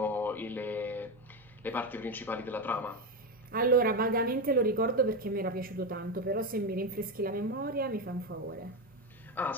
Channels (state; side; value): normal; both; correlation 0.13